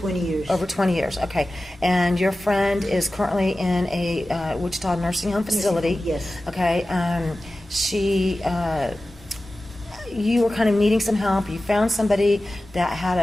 years. Over 20 years, okay. And your friend is currently in a Wichita nursing home facility. Yes. Okay. You were kind of needing some help. You found somebody that had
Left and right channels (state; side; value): normal; both; correlation 0.95